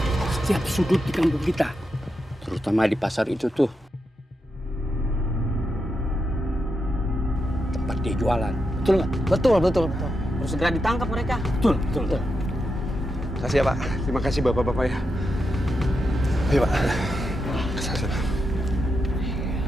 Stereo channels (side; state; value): both; normal; correlation 0.86